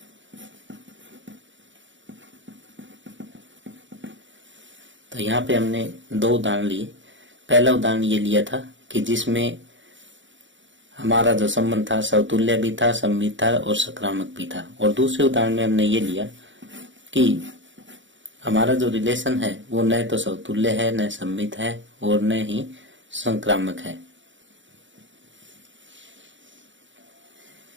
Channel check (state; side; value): late; left; 0.55 ms